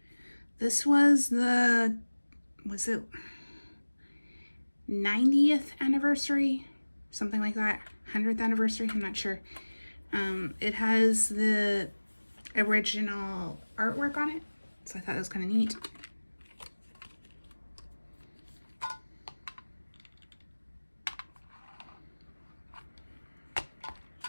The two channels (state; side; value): inverted; both; correlation -1.00